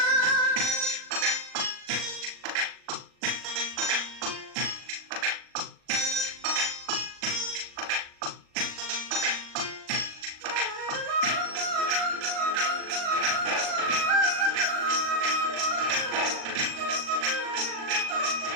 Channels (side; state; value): left; late; 39 ms